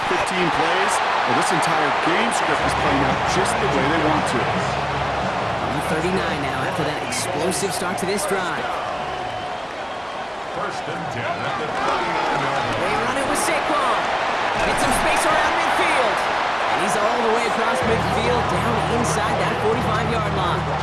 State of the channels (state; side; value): identical; both; correlation 1.00